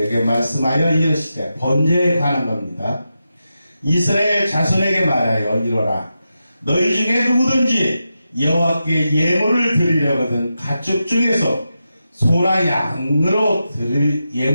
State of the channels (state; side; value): inverted; both; correlation -0.89